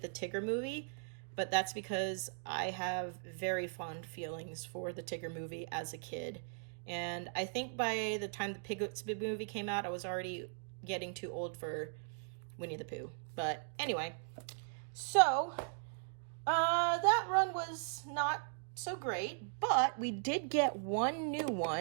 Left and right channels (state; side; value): silent; left; digital silence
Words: the Tigger movie, but that's because I have very fond feelings for the Tigger movie as a kid. And I think by the time the Piglet's Big Movie came out, I was already getting too old for Winnie the Pooh. But anyway, so that run was not so great, but we did get 1 new